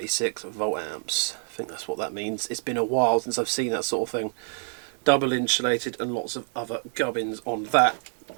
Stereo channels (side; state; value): left; silent; digital silence